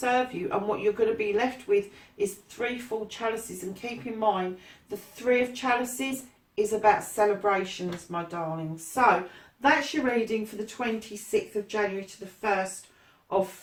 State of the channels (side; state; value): both; identical; correlation 1.00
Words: you, and what you're going to be left with is 3 full chalices. And keep in mind, the 3 of chalices is about celebrations, my darlings. So that's your reading for the 26th of January to the 1st of